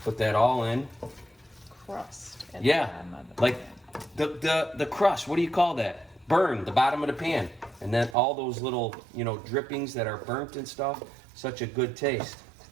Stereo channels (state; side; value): drops out; left; at 8.2 s